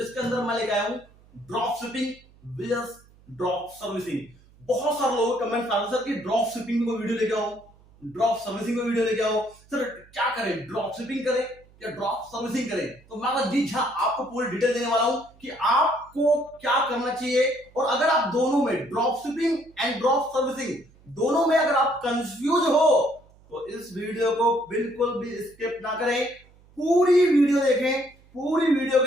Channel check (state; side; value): noise; right; hum, 28 dB below the sound